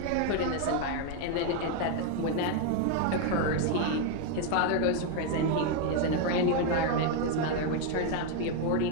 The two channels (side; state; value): both; different; correlation 0.01